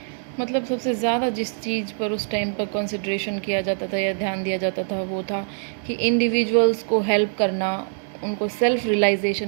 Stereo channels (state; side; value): silent; left; digital silence